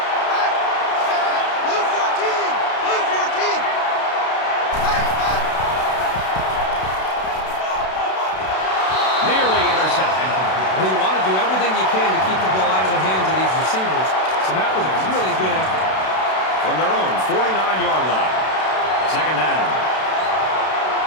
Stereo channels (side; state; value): right; late; 32 ms